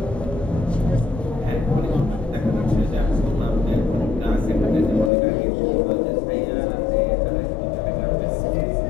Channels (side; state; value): right; drops out; at 5.1 s